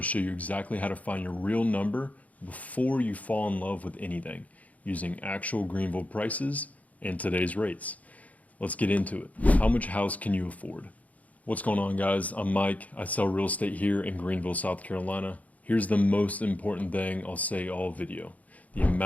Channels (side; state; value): right; late; 0.072 ms